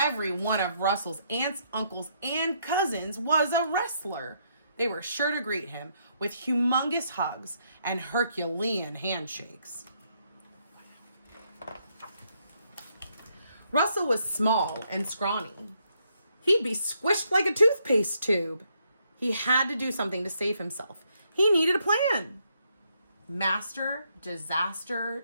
one of Russell's aunts, uncles, and cousins was a wrestler. They were sure to greet him with humongous hugs and Herculean handshakes. Russell was small and scrawny. He'd be squished like a toothpaste tube. He had to do something to save himself. He needed a plan. Master Disaster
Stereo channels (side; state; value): both; inverted; correlation -0.74